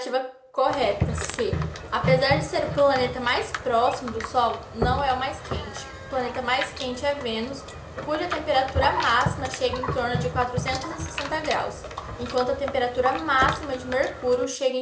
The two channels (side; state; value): both; identical; correlation 1.00